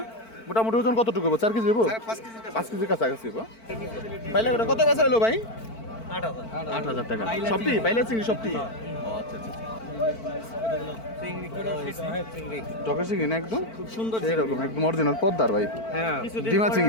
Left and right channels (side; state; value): right; late; 4.5 ms